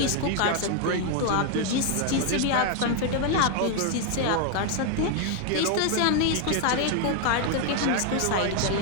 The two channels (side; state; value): both; different; correlation 0.00